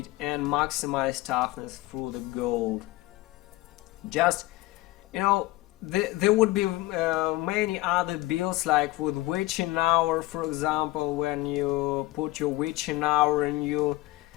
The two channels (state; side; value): quieter; right; 18.1 dB